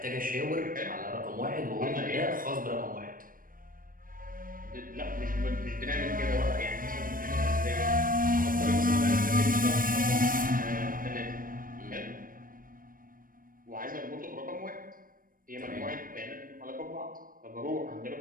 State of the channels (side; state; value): left; late; 0.41 ms